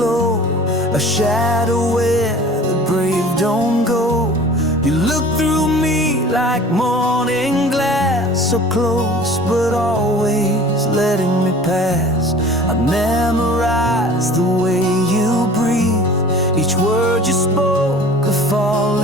a shadow where the brave don't go. You looked through me like morning glass, so close but always letting me pass. I memorized the way you breathe, each word you spoke a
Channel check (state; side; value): normal; both; correlation 0.44